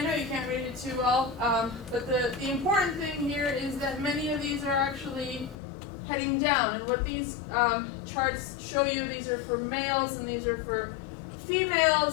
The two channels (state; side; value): drops out; right; at 5.6 s